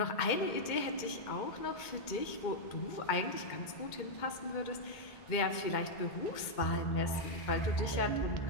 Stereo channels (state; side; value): late; right; 2.2 ms